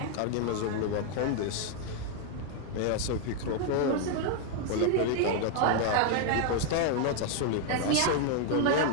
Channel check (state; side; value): different; both; correlation 0.00